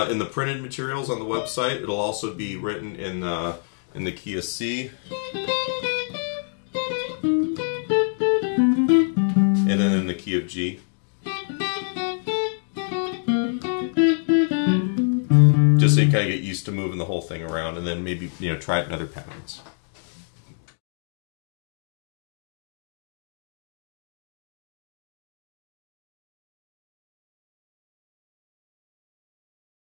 In the printed materials on the website, it'll also be written in the key of C. And then in the key of G. Just so you kind of get used to moving the whole thing around, and then maybe, you know, try it in other patterns.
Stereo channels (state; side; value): silent; right; 61 dB below the other